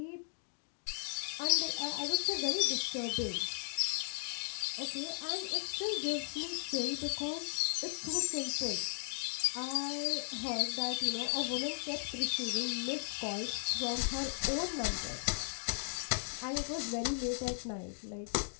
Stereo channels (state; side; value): silent; right; digital silence